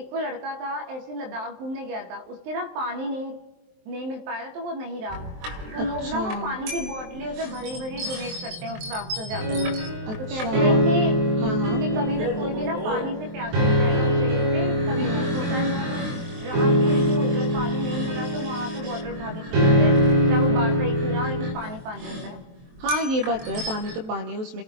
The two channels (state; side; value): late; left; 23 ms